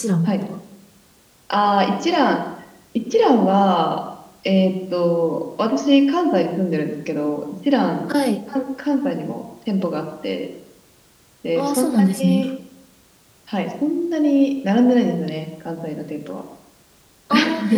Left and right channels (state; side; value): identical; both; correlation 1.00